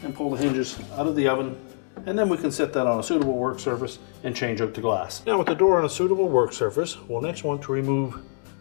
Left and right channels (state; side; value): silent; right; digital silence